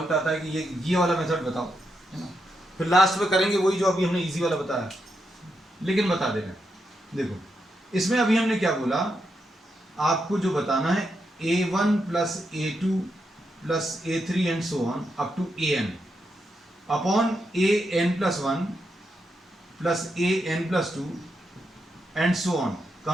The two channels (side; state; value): both; normal; correlation 0.83